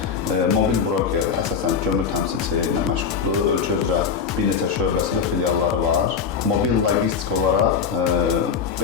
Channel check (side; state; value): right; quieter; 6.3 dB